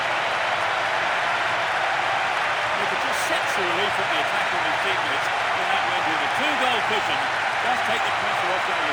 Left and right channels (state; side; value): identical; both; correlation 1.00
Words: He could just set the relief from the attack on his teammates. And that went with a 2-goal cushion. Does take the pressure off the